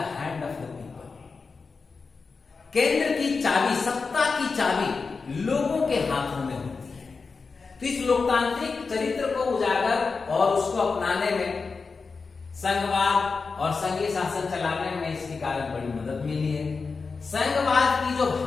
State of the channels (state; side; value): quieter; right; 4.6 dB